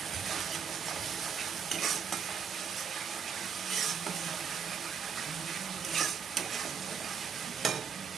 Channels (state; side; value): quieter; left; 6.7 dB